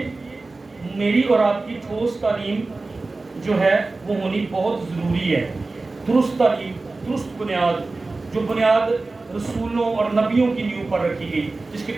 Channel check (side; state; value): left; quieter; 3.5 dB